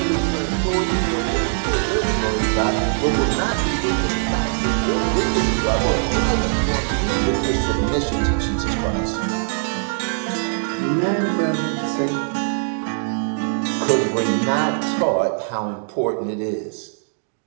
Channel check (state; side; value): silent; left; digital silence